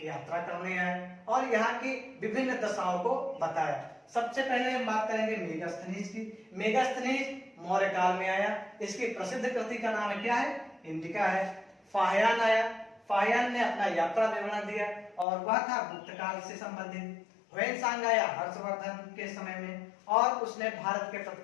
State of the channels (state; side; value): drops out; right; at 15.2 s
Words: यात्रा करने आए और यहाँ की विभिन्न दशाओं को बताया। सबसे पहले हम बात करेंगे मेगास्थनीज की। मेगास्थनीज मौर्य काल में आया। इसकी प्रसिद्ध कृति का नाम क्या है? इंडिका है। फाहियान आया, फाहियान ने अपना यात्रा विवरण दिया और वह था गुप्त काल से संबंधित। ह्वेनसांग आया हर्षवर्धन के समय में और उसने भारत के